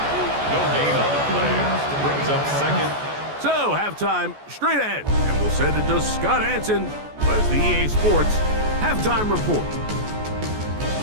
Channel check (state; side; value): late; left; 14 ms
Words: No gain on the play. Brings up second. So, halftime straight ahead. And we'll send it to Scott Hansen as the EA Sports halftime report.